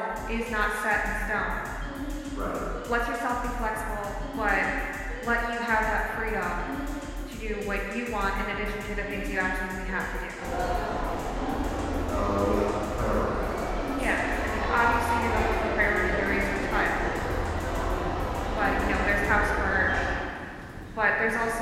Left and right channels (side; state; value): both; identical; correlation 1.00